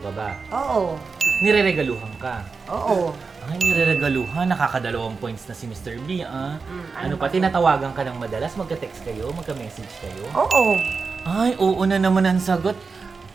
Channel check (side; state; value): left; quieter; 4.7 dB